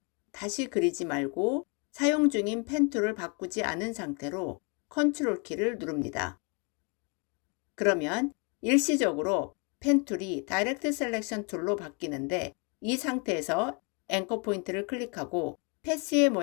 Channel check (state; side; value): quieter; right; 32.4 dB